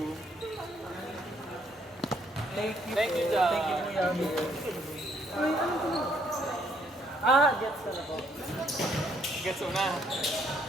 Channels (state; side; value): normal; both; correlation 0.68